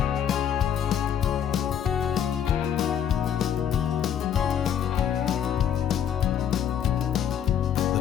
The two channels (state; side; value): quieter; right; 9.1 dB